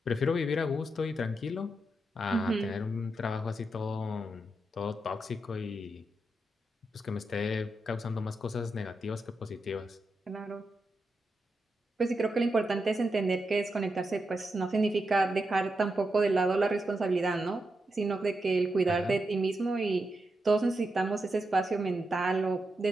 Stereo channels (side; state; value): both; normal; correlation 0.86